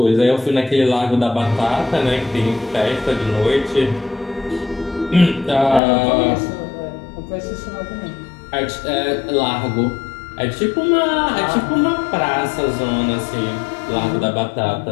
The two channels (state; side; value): drops out; right; at 5.8 s